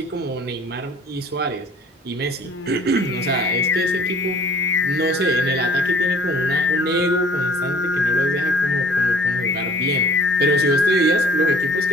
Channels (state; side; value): normal; both; correlation 0.52